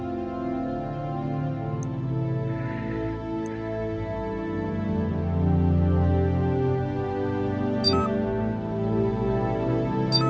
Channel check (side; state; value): both; identical; correlation 1.00